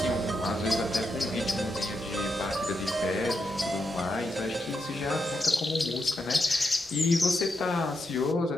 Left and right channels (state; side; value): normal; both; correlation 0.84